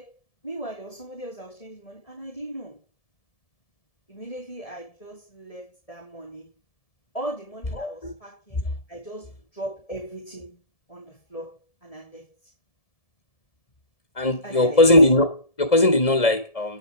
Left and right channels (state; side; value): late; right; 1.7 ms